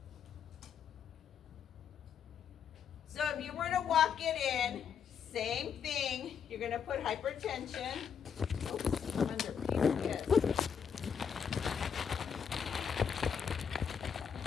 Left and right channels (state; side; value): quieter; right; 7.3 dB